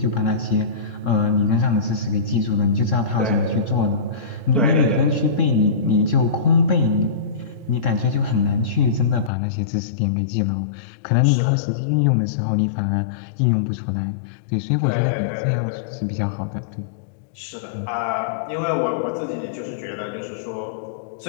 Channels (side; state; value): right; drops out; at 9.3 s